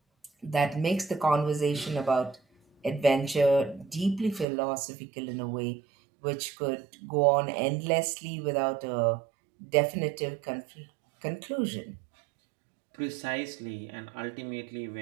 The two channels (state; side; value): drops out; left; at 4.5 s